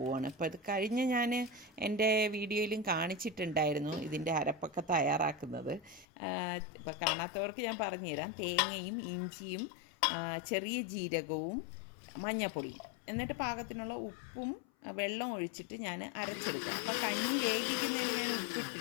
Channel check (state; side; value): drops out; right; at 6.1 s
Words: അപ്പോൾ ഇത് കഴിഞ്ഞ് ഞാൻ എൻ്റെ വീഡിയോയിലും കാണിച്ചിട്ടുണ്ടായിരുന്നു ഇതിൻ്റെ അരപ്പൊക്കെ തയ്യാറാക്കുന്നത്. ഇപ്പോൾ കാണാത്തവർക്ക് ഞാൻ പറഞ്ഞുതരാം. തേങ്ങയും ഇഞ്ചിയും ചെറിയ ജീരകവും മഞ്ഞൾപ്പൊടിയും, എന്നിട്ട് പാകത്തിനുള്ള ഉപ്പും വെള്ളം ഒഴിച്ചിട്ട് ഞാൻ അരച്ചെടുക്കും. അപ്പോൾ കഞ്ഞി വേവിക്കുന്നതിൽ ഞാൻ